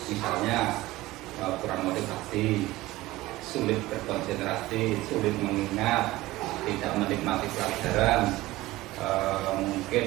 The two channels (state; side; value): quieter; left; 18.2 dB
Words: misalnya kurang motivasi, sulit berkonsentrasi, sulit mengingat, tidak menikmati pelajaran,